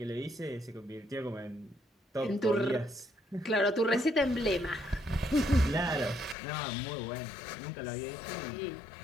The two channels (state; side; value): drops out; right; at 6.4 s